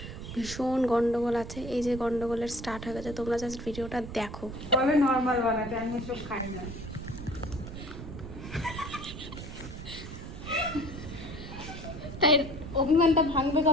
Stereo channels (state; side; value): noise; right; rumble, 10 dB below the sound